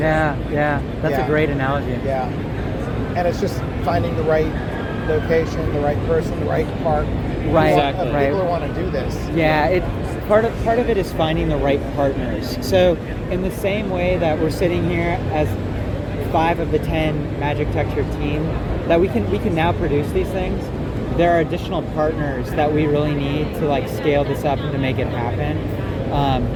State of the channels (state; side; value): identical; both; correlation 1.00